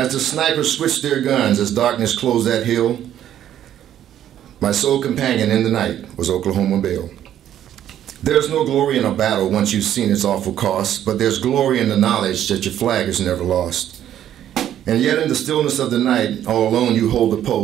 the snipers switched their guns, as darkness closed that hill, my sole companion in the night was Oklahoma Bill. There's no glory in a battle once you've seen its awful cost, but there's glory in the knowledge that your flag is never lost. And yet in the stillness of the night, all alone you hold the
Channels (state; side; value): quieter; left; 11.0 dB